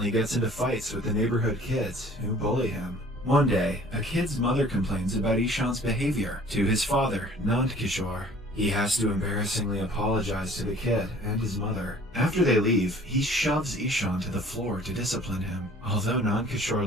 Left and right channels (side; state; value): both; normal; correlation 0.51